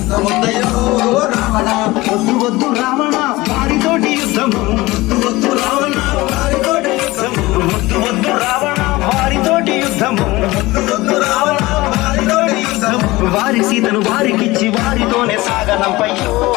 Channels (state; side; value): quieter; right; 20.1 dB